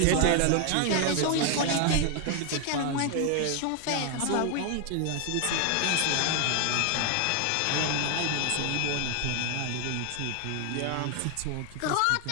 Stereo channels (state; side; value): different; both; correlation 0.00